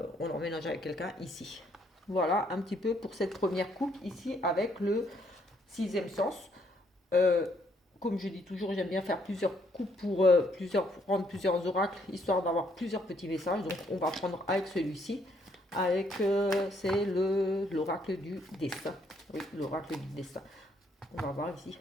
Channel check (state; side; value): normal; both; correlation 0.70